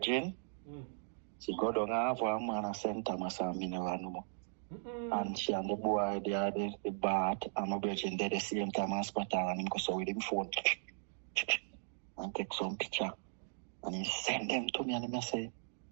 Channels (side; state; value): left; silent; digital silence